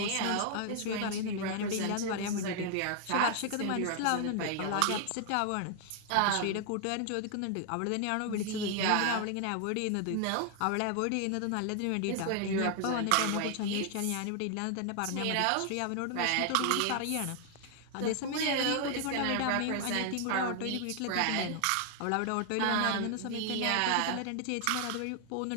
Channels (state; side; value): different; both; correlation 0.00